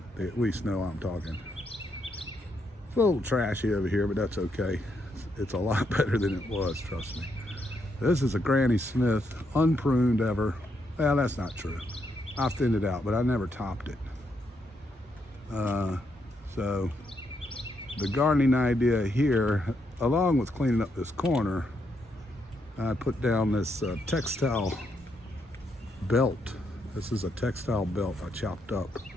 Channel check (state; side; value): normal; both; correlation 0.78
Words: They at least know I'm talking. It's a little trashy over here, but that's okay. It's a lot better than it was, trust me. This is a Granny Smith, unpruned ever. Well, that's not true. I thinned it out, but I never topped it. So the gardening idea here, along with cleaning up this corner, I put down this textile belt. This is a textile belt I chopped up.